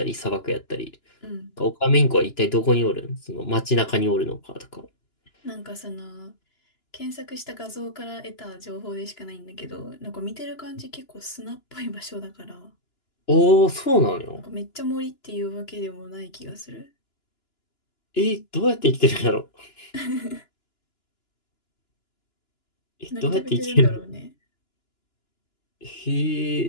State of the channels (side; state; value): right; late; 2.9 ms